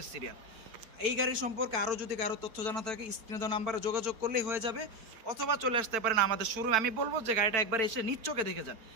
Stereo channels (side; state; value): left; late; 4.5 ms